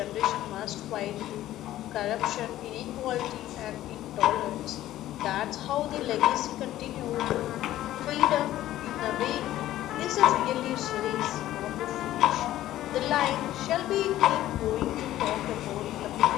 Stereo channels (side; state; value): right; quieter; 14.0 dB